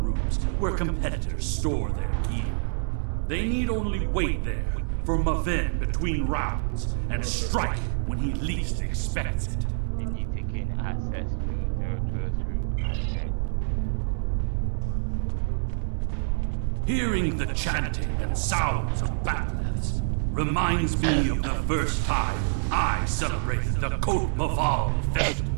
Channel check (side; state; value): left; silent; 60 dB below the other